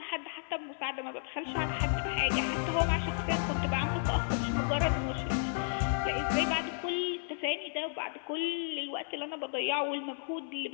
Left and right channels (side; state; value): right; silent; 56 dB below the other